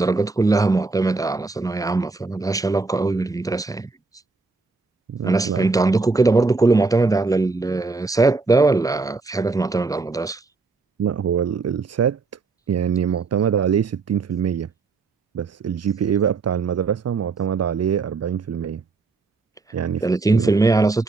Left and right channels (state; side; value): quieter; left; 3.9 dB